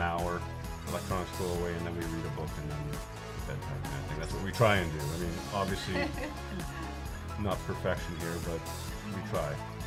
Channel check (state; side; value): identical; both; correlation 1.00